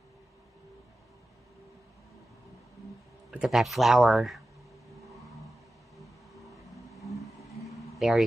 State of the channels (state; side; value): normal; both; correlation 0.94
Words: Look at that flower. There